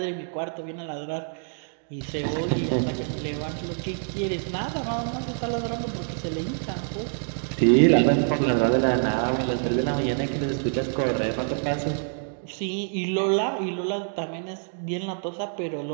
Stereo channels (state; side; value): silent; left; 55 dB below the other